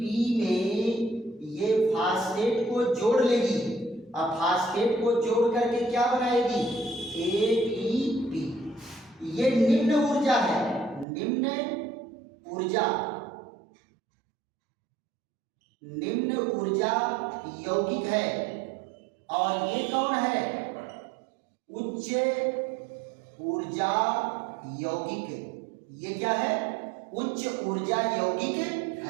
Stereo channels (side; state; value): left; drops out; at 11.1 s